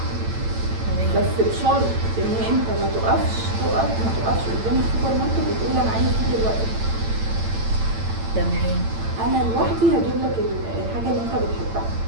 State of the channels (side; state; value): left; late; 8.9 ms